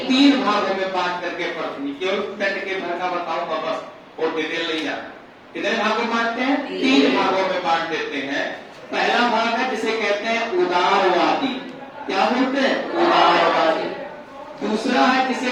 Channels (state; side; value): identical; both; correlation 1.00